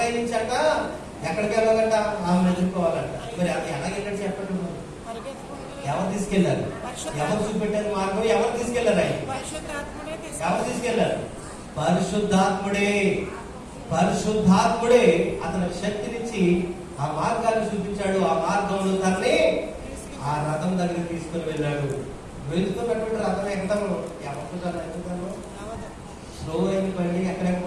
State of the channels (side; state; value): both; identical; correlation 1.00